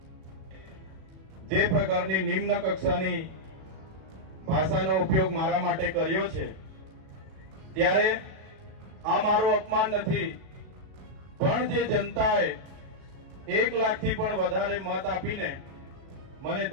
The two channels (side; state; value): left; late; 37 ms